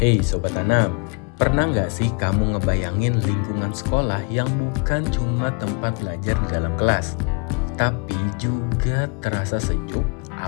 Hey Sobat Tanam, pernah nggak sih kamu ngebayangin lingkungan sekolah yang bukan cuma tempat belajar di dalam kelas, tapi juga terasa sejuk,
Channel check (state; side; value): quieter; right; 35.0 dB